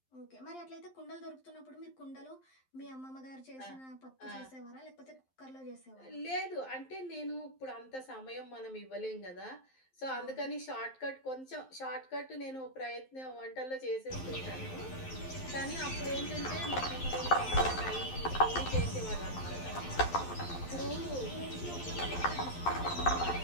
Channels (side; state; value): right; late; 11 ms